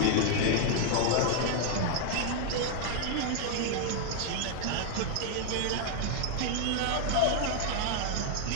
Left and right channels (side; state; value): both; different; correlation 0.00